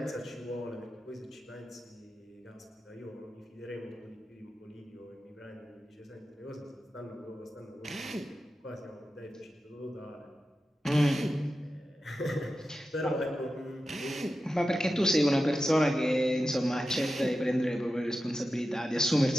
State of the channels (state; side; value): normal; both; correlation 0.92